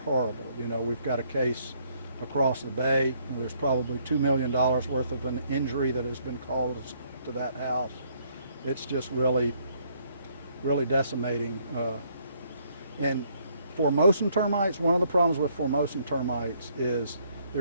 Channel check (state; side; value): inverted; both; correlation -0.67